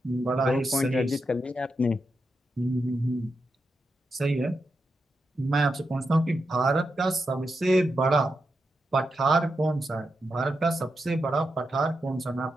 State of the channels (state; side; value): normal; both; correlation 0.86